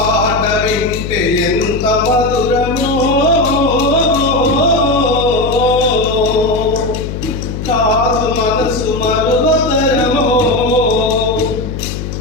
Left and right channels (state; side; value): noise; left; hum, 6 dB below the sound